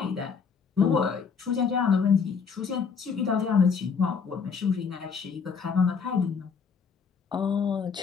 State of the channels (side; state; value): right; quieter; 5.9 dB